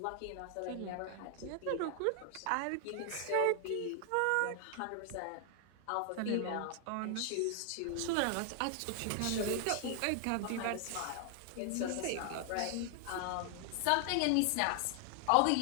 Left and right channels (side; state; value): both; different; correlation 0.00